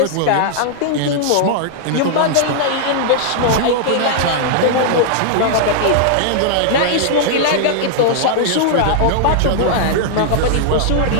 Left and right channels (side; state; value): both; different; correlation -0.01